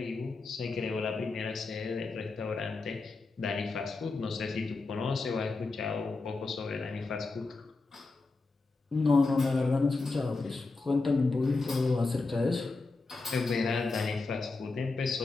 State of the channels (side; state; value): right; quieter; 3.7 dB